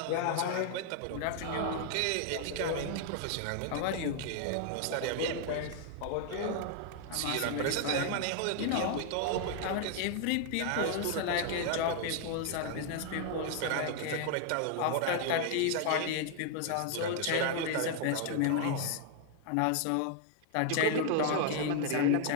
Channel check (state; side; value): different; both; correlation 0.00